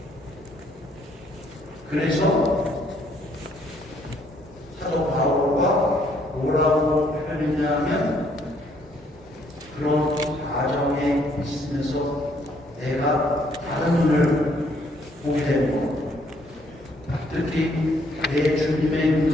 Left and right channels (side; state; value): both; normal; correlation 0.67